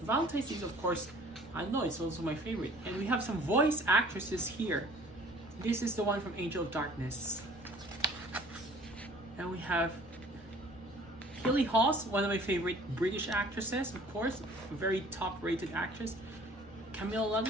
Valentine's Day, of course, I know it's also my favorite. And we have some voice actresses here. This is the one from Angel of Darkness. And we have Hilly Haas, one of my favorite British actresses, of course, a very top-rated actress. Camille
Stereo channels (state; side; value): noise; right; rumble, 24 dB below the sound